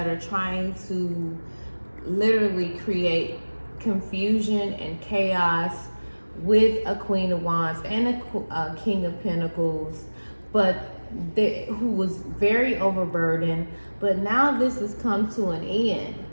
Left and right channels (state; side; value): inverted; both; correlation -1.00